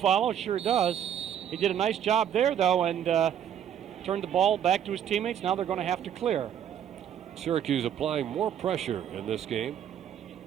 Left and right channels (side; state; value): left; quieter; 9.6 dB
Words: Sure does. He did a nice job there, though, and turned the ball back to his teammates. Now they're going to have to clear. Syracuse applying more pressure in this game,